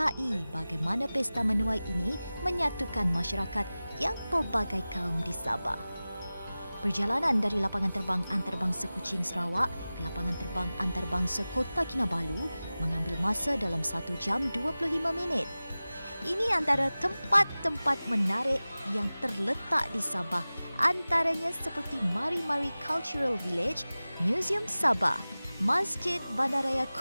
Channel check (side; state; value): both; inverted; correlation -0.97